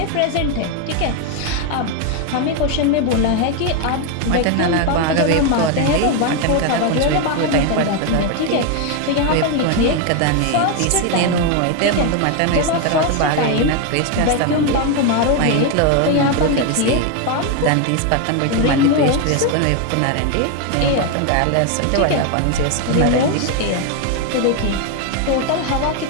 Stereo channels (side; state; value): both; different; correlation 0.01